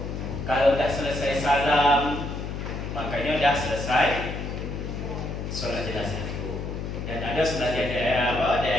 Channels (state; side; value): noise; left; hum, 5 dB below the sound